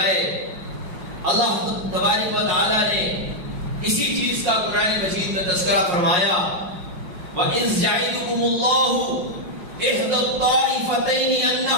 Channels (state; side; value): late; left; 5.6 ms